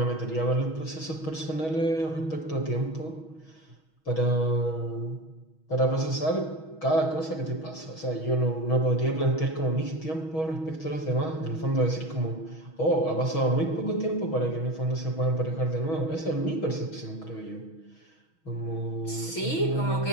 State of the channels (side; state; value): right; late; 6.3 ms